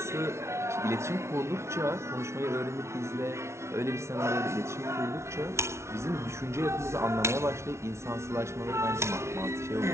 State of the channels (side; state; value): left; late; 0.13 ms